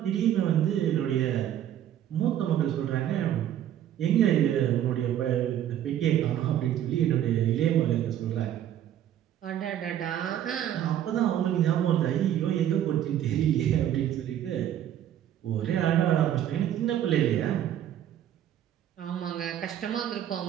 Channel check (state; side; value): quieter; left; 11.0 dB